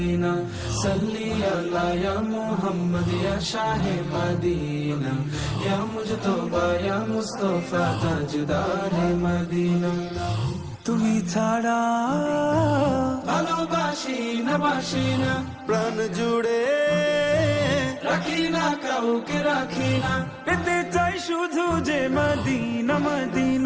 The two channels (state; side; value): identical; both; correlation 1.00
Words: صلی علی یا محمد یا شاہ مدینہ یا مجتبی یا مصطفی تاجدار مدینہ তুমি ছাড়া বাসি না, প্রাণ জুড়ে রাখি না কাউকে রাখি না, পেতে চাই শুধু যে মদিনা